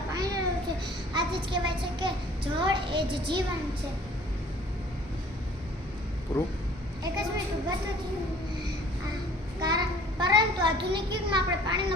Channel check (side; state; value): both; normal; correlation 0.52